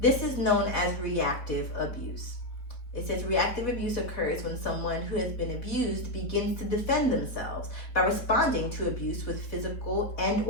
is known as reactive abuse. It says reactive abuse occurs when someone who has been abused begins to defend themselves by responding to abuse with physical and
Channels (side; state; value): right; late; 4.2 ms